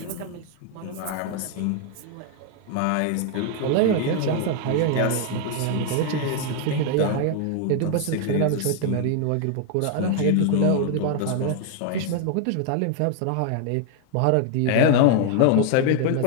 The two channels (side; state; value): both; different; correlation 0.00